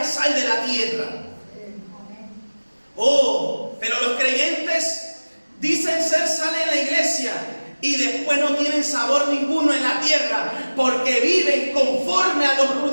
sal de la tierra. Oh, pero los creyentes dicen ser sal en la iglesia y después no tienen sabor ninguno en la tierra porque viven conforme a los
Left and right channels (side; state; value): both; inverted; correlation -1.00